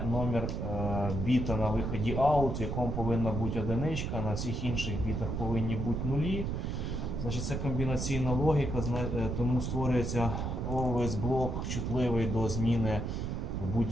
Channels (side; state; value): right; noise; rumble, 2 dB below the sound